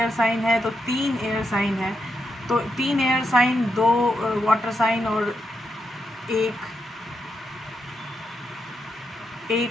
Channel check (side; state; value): both; normal; correlation 0.83